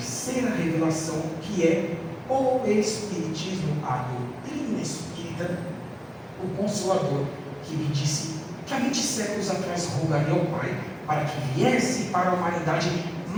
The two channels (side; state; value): both; identical; correlation 1.00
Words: revelação, que é o Espiritismo, a doutrina espírita, o Consolador, que me disse que há 20 séculos atrás rogaria ao Pai para que viesse para a humanidade,